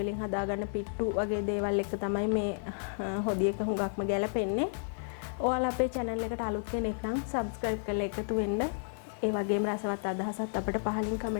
වලින් හදාගන්න පිට්ටු වගේ දේවල් එක තමයි මේ හොදියක හුඟක්ම ගැලපෙන්නේ. ඔයාලා අපේ channel එකට අලුත් කෙනෙක් නම් subscribe කරලා එකතු වෙන්න. ඒ වගේම රසවත් අදහසත් අපිට පහලින්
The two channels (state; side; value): silent; right; digital silence